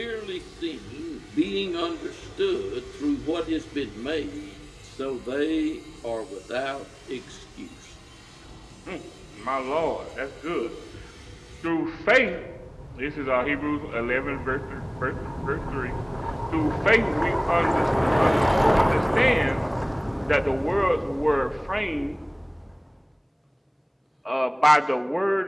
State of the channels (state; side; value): identical; both; correlation 1.00